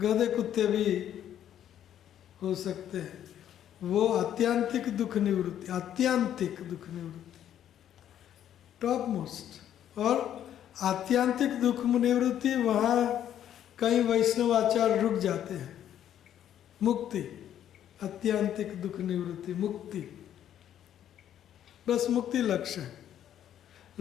कुत्ते भी हो सकते हैं। वो आत्यांतिक दुख निवृत्ति, आत्यांतिक दुख निवृत्ति, टॉप मोस्ट। और आत्यांतिक दुख निवृत्ति, वहाँ कई वैष्णवाचार्य रुक जाते हैं। मुक्ति, आत्यांतिक दुख निवृत्ति, मुक्ति, बस मुक्ति लक्ष्य है।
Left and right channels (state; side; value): quieter; right; 10.6 dB